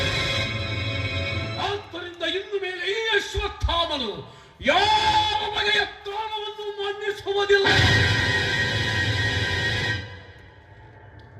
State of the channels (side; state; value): both; identical; correlation 1.00